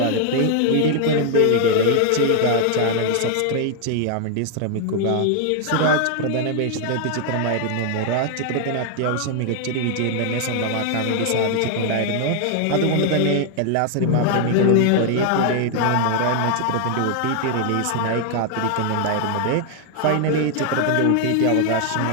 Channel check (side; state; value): both; different; correlation 0.00